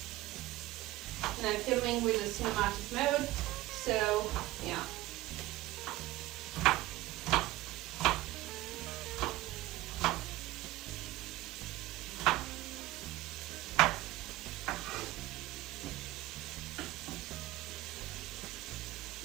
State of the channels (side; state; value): left; quieter; 17.4 dB